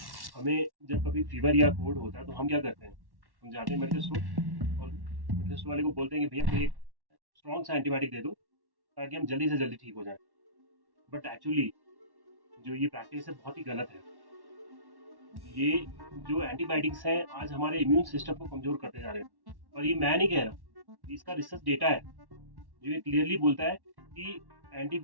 हमें जब कभी फीवर या कोल्ड होता है तो हम क्या करते हैं, हम जाते हैं मेडिकल स्टोर और मेडिकल स्टोर वाले को बोलते हैं कि भैया कोई एक स्ट्रॉन्ग सा एंटीबायोटिक दे दो ताकि हम जल्दी से जल्दी ठीक हो जाएं। बट एक्चुअली जो ये प्रैक्टिस है बहुत ही गलत है। ये जो एंटीबायोटिक्स हैं आज हमारे इम्यून सिस्टम को कमजोर करते जा रहे हैं। और ये मैं नहीं कह रहा, इसका रिसर्च डेटा है जो ये क्लियरली बोलता है कि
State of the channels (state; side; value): late; left; 1.1 ms